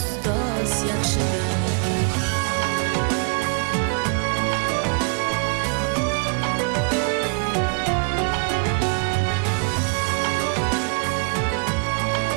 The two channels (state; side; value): quieter; left; 36.7 dB